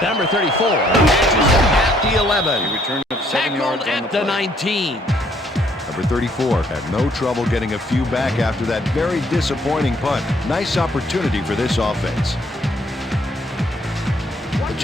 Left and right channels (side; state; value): both; normal; correlation 0.66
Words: Number 34 catches it at the 11. He returned 7 yards Tackled on at the the play. 19. Number 34 had no trouble getting a few back after that very disappointing punt. Nice opportunity for this offense. The